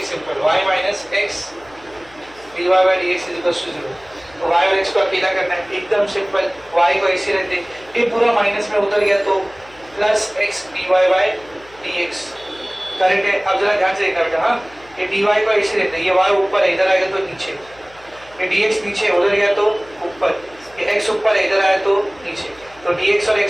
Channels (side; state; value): left; noise; hum, 26 dB below the sound